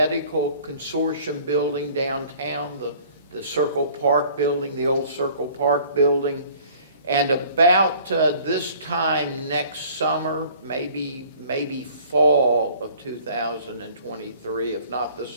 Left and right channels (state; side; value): inverted; both; correlation -0.52